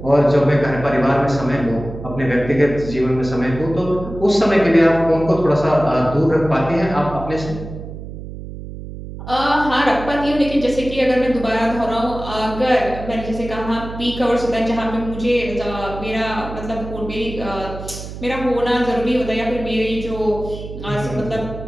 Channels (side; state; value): right; noise; hum, 11 dB below the sound